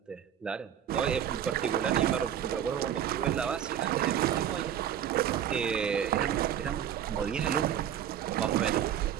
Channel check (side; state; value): left; quieter; 9.8 dB